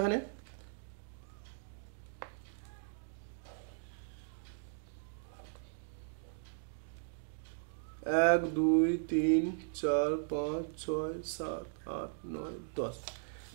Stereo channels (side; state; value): left; silent; digital silence